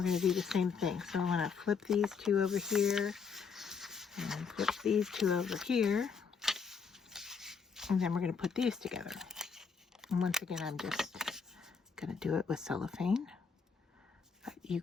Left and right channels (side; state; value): right; quieter; 5.8 dB